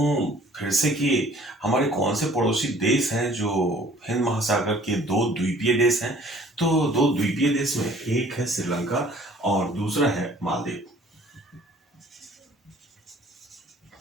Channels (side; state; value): both; normal; correlation 0.54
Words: फिर से कि हमारे कौन से पड़ोसी देश हैं जो हिंद महासागर के 2 द्वीपीय देश हैं, तो 2 द्वीपीय देश में एक है श्रीलंका और दूसरा है मालदीव।